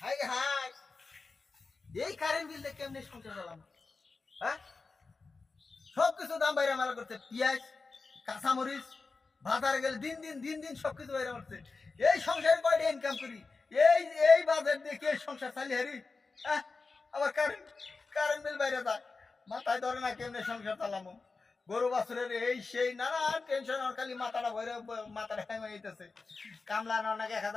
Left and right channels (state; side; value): quieter; right; 4.1 dB